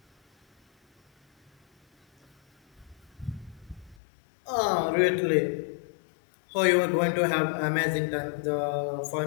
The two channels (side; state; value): right; drops out; at 4.0 s